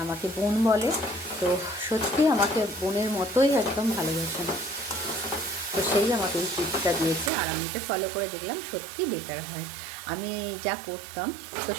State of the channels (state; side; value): drops out; left; at 7.3 s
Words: আমাকে বোন বলে, তো সত্যি আমাকে বোনের মতোই একদম ভালোবাসেন। তো সেই আমাকে এই টিপসটা দিয়েছে, আর আমি এটা ফলো করে দেখলাম সত্যি বেটার হয়। আমি যা করতাম তো